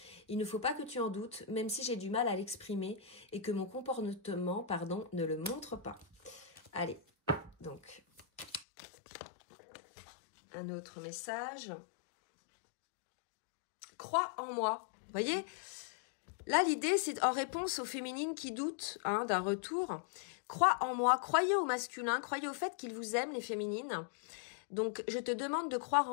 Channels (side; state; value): right; drops out; at 8.7 s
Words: Il ne faut pas que tu en doutes, même si j'ai du mal à l'exprimer et que mon comportement, ne le montre pas. » Allez, donc, un autre message. « Crois en moi. » Vous voyez ? Là, l'idée, c'est en réponse aux féminines qui doutent hein, d'un retour. Crois en moi, croyez au masculin, croyez au fait qu'il vous aime, les féminines. Donc, je te demande de croire